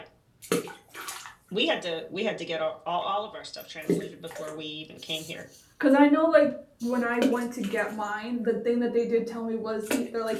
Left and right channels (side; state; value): both; identical; correlation 1.00